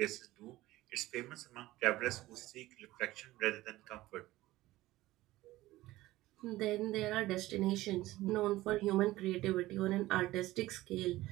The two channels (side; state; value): left; quieter; 17.2 dB